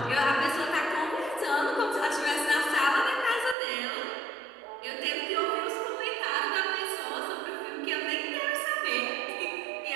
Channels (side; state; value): left; drops out; at 3.6 s